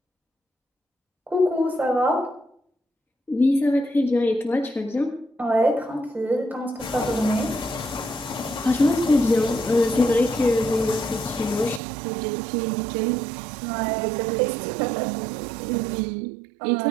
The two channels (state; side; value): drops out; left; at 11.8 s